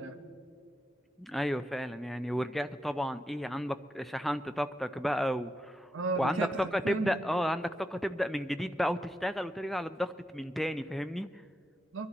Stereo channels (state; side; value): normal; both; correlation 0.85